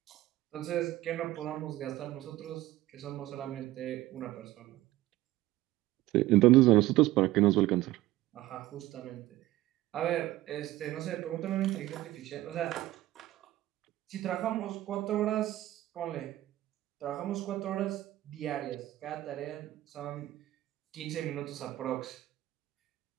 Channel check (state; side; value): quieter; left; 16.1 dB